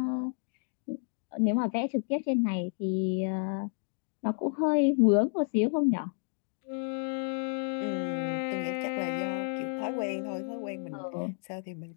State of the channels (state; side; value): silent; right; 57 dB below the other